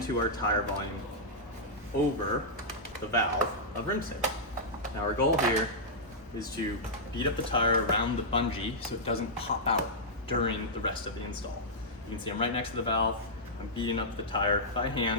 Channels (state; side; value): normal; both; correlation -0.10